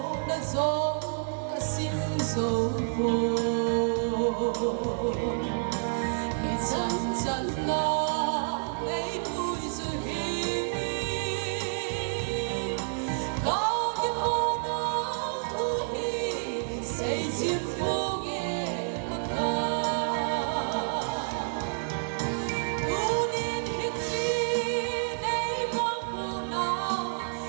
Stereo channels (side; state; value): left; silent; digital silence